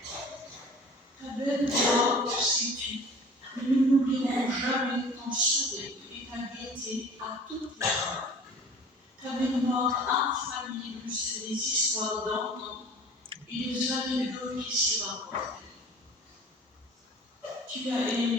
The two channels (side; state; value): both; normal; correlation 0.44